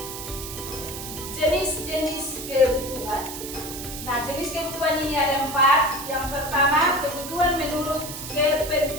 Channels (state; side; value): noise; right; hiss, 9 dB below the sound